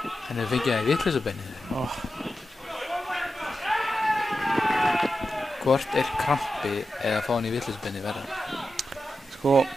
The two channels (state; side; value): normal; both; correlation 0.90